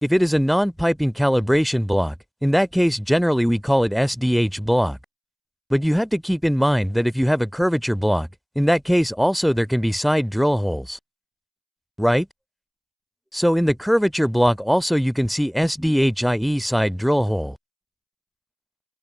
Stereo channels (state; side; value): identical; both; correlation 1.00